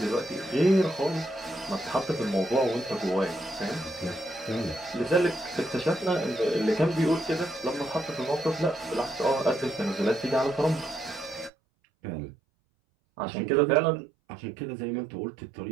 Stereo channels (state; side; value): drops out; left; at 11.5 s